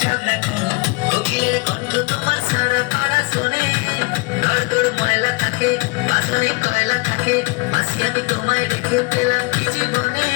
ঝগড়া করো, কোকিলের কণ্ঠ তোমার সারা পাড়া শোনে। দর দর ময়লা থাকে বাসনে কয়লা থাকে, মাসি আমি তোমায় রেখে পেলাম কি জীবনে।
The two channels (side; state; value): right; quieter; 26.7 dB